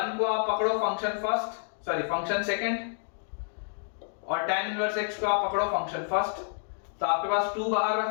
को आप पकड़ो फंक्शन सेकंड, और tan इनवर्स x को आप पकड़ो फंक्शन फर्स्ट। तो आपके पास 2 बाहर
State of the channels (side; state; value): right; silent; digital silence